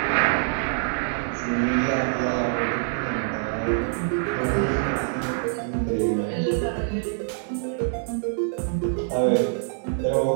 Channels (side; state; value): left; silent; digital silence